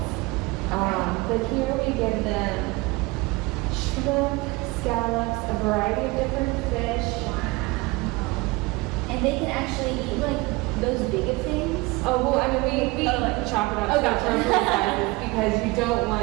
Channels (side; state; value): left; quieter; 23.5 dB